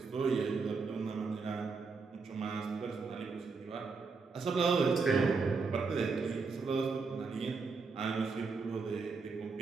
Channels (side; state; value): left; quieter; 4.6 dB